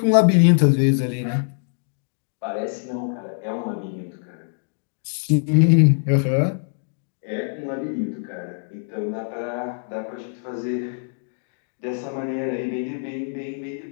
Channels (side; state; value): right; silent; digital silence